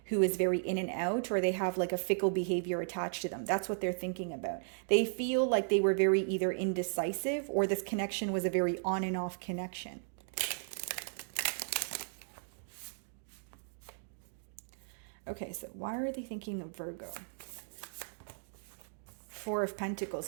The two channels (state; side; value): silent; left; digital silence